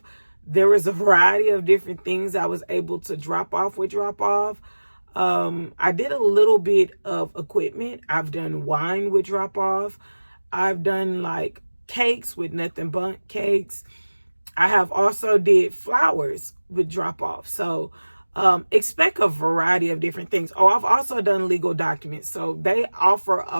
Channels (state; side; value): inverted; both; correlation -1.00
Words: There was a variety of different things I was able to drop off with drop off. I did a little bit of equipment. I've done wine with drop off. I've done like cakes with Nothing Bundt Cakes. I have also did flowers with drop off. So expect a variety of different things. Oh, I've also done legal documents. So they offer